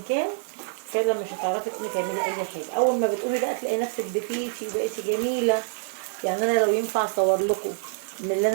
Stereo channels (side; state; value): left; silent; digital silence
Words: كان، فعلا مش هتعرفي تقومي تعملي اي حاجه. اول ما بتقومي بقى تلاقي نفسك دفيتي وبقيتي جميله. يعني انا لو ينفع اصور لكم من اللي